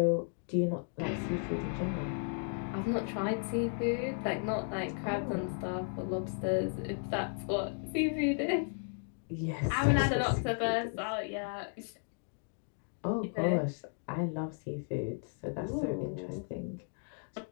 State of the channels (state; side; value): silent; right; 55 dB below the other